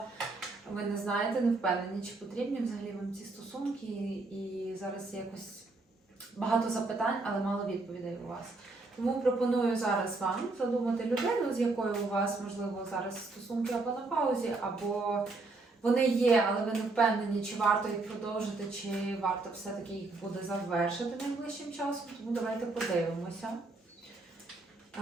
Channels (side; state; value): left; quieter; 3.4 dB